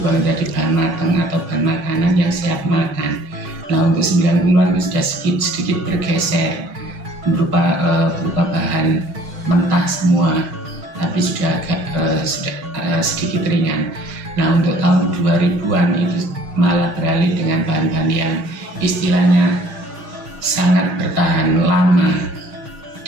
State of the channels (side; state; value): left; late; 6.3 ms